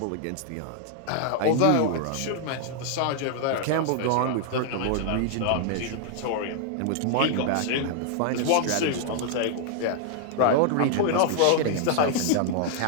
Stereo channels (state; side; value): different; both; correlation 0.00